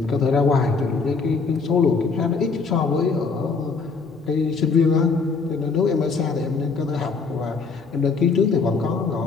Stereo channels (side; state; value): right; quieter; 4.7 dB